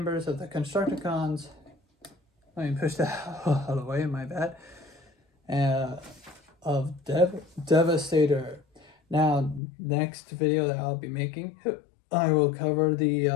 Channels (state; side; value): drops out; right; at 9.6 s